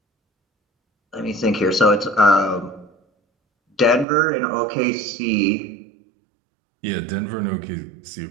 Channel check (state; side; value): drops out; left; at 4.0 s